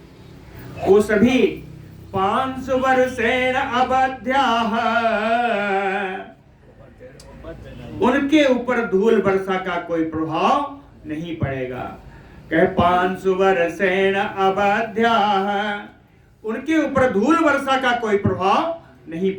वो सभी 500 वर्षेण अवध्याः, उनके ऊपर धूल वर्षा का कोई प्रभाव नहीं पड़ेगा। कहे 500 वर्षेण अवध्याः, उनके ऊपर धूल वर्षा का कोई प्रभाव नहीं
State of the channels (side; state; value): both; identical; correlation 1.00